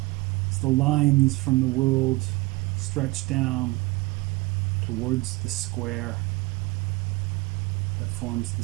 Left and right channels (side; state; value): left; quieter; 22.4 dB